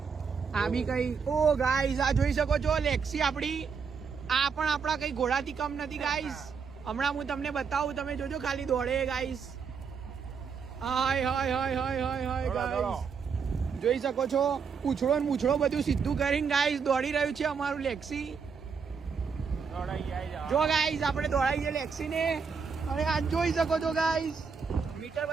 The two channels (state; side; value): quieter; left; 5.9 dB